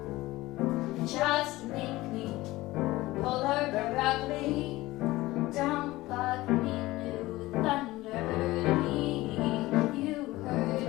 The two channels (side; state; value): right; quieter; 18.6 dB